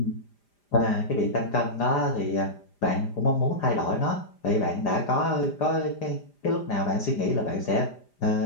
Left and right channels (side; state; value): right; late; 5.0 ms